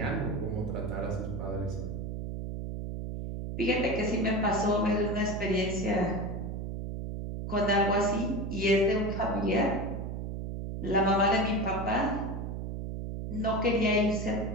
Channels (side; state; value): right; noise; hum, 5 dB below the sound